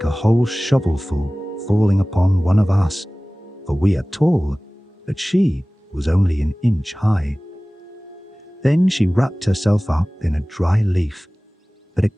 a whole shovelful falling upon one of us, for we are tall, but she was only an inch high. Then she wrapped herself up in a dry leaf, but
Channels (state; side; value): normal; both; correlation 0.98